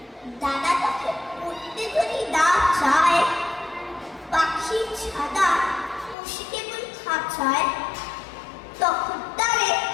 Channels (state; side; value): drops out; right; at 6.2 s